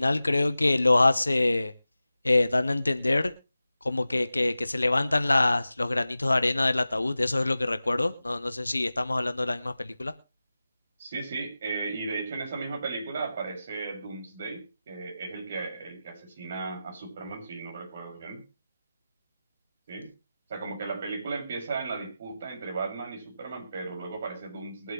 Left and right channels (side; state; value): both; inverted; correlation -0.95